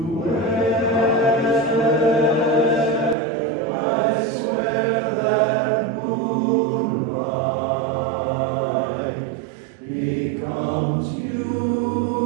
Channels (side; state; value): left; drops out; at 3.2 s